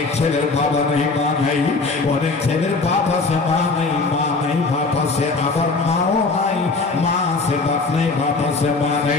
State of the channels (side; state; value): right; quieter; 3.9 dB